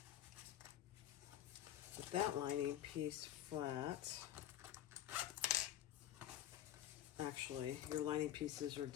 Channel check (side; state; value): right; quieter; 11.8 dB